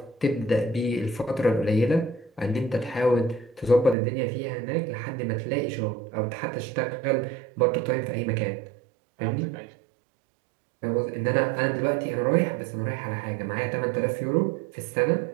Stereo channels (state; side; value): drops out; left; at 4.0 s